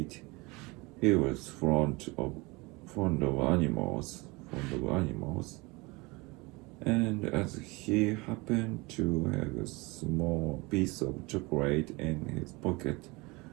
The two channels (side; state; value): left; quieter; 25.0 dB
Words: He was fond of animals, and as he happened to have a small piece of chocolate in his pocket,